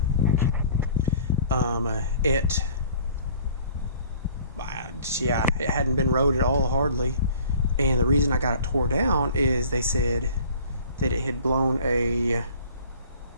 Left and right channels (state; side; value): inverted; both; correlation -0.49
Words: It hadn't been rode at all hardly. And the reason I got it tore down is they said that it had blown a,